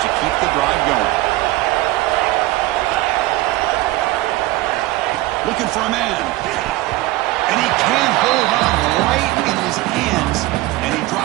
to keep the drive going. Looking for a man. And he can't hold on right in his hands. And he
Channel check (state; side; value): quieter; left; 18.3 dB